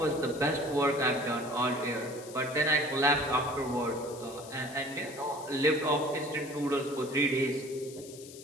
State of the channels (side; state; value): left; noise; hiss, 17 dB below the sound